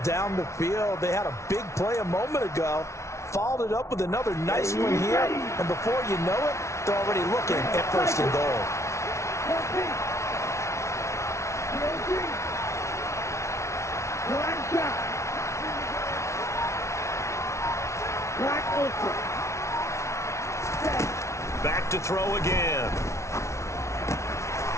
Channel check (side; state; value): right; late; 0.14 ms